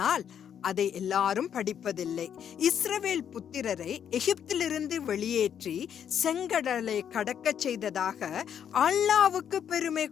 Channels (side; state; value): right; quieter; 8.8 dB